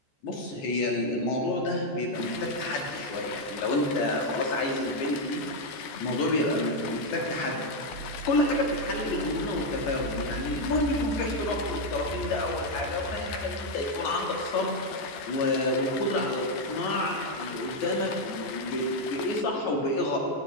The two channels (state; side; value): late; right; 14 ms